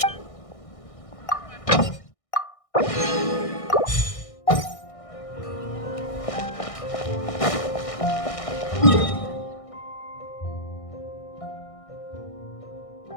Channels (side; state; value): right; late; 1.6 ms